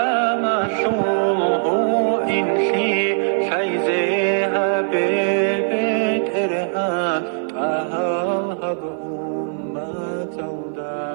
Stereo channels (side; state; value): left; silent; 60 dB below the other